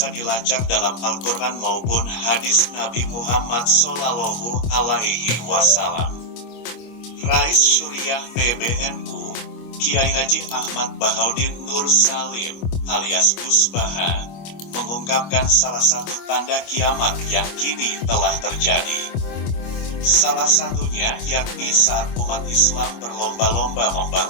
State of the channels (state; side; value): late; right; 25 ms